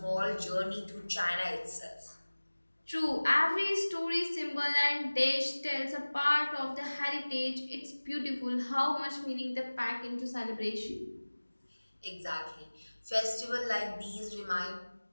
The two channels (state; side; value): inverted; both; correlation -1.00